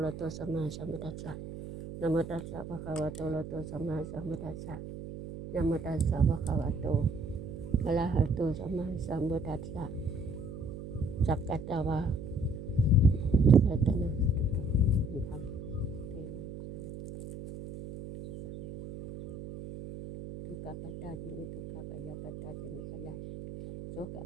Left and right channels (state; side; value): noise; right; hum, 10 dB below the sound